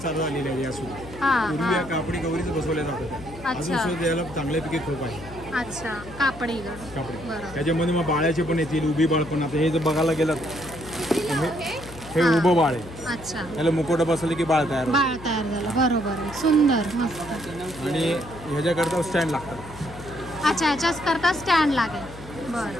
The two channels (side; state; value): left; noise; hum, 16 dB below the sound